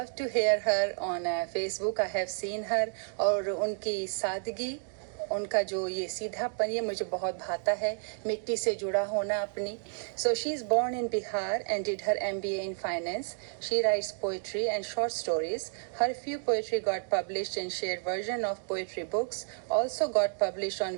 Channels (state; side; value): silent; left; 57 dB below the other